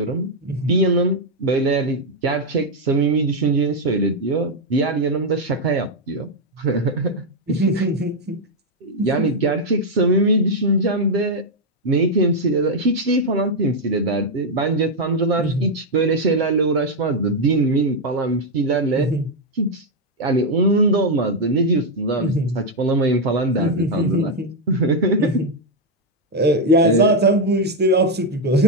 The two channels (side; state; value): both; normal; correlation 0.02